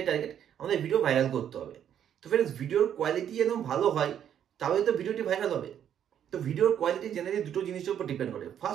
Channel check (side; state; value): left; quieter; 9.6 dB